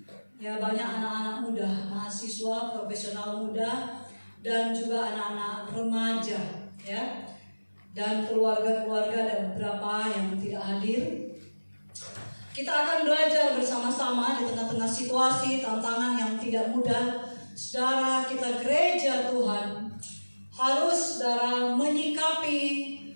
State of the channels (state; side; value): inverted; both; correlation -1.00